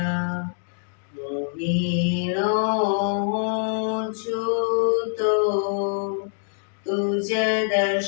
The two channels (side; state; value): right; silent; digital silence